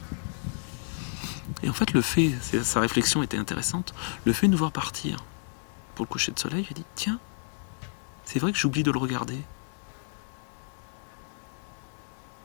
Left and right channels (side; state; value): right; silent; digital silence